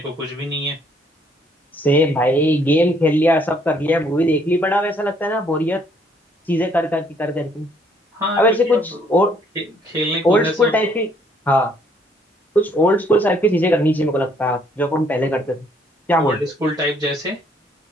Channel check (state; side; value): normal; both; correlation 0.65